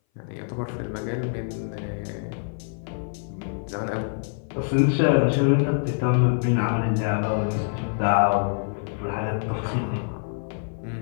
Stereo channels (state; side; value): silent; right; 58 dB below the other